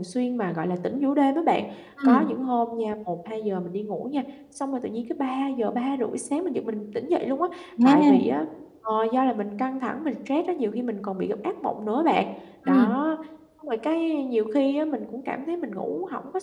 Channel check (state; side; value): identical; both; correlation 1.00